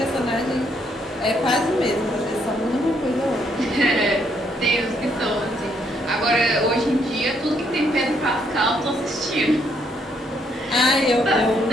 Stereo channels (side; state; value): both; normal; correlation 0.72